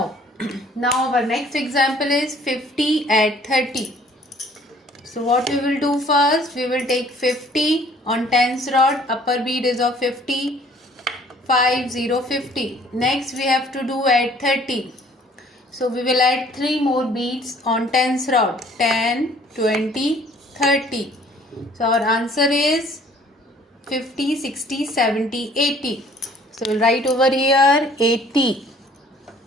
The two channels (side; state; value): both; normal; correlation 0.56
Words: our next example is 50 add 30. So what we will do first, we will take 50 on tens rod, upper bead is of 50, 5, 0, 50. Next we have to do add 30. So we will add 3 more beads on tens rod, 10, 20, 30. So our answer is 50, 60, 70, 80. So we'll write over here 80.